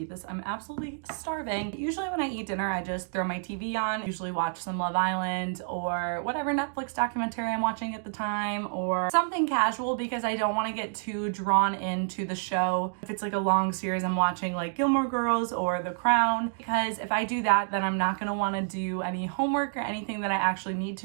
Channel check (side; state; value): left; silent; digital silence